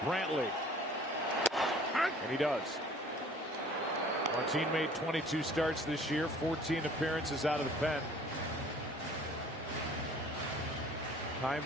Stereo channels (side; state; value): both; normal; correlation 0.51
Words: Brantley. And he does. Martin made 22 starts this year, 14 appearances out of the pen. Chaim